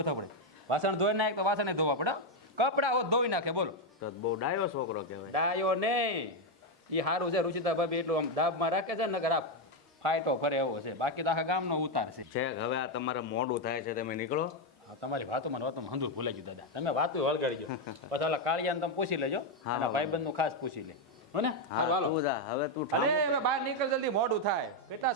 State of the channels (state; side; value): normal; both; correlation 0.04